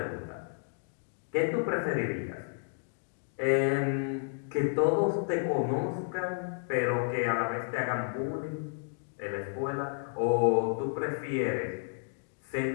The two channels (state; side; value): silent; right; digital silence